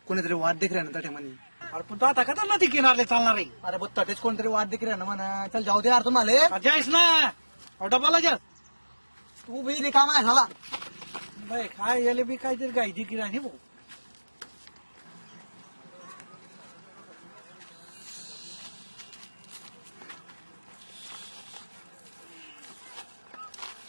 कोणीतरी वाद देख ना त्या म्हणे. अरे पण तू आता का चालला ती किनारले चालणार आहे? अरे बघ तात्याच कोणतरी वाद देख ना म्हणा. चल जाऊ दे यार तुम्हाला. जायस ना डबाला जा. तू बी रिकाम आहे झाला. बाय काय याले बी काहीतरी गायची किराणी भाऊ.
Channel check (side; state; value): both; inverted; correlation -1.00